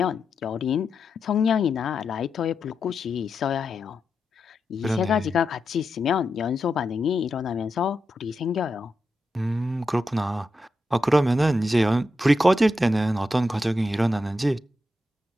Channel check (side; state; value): both; normal; correlation 0.87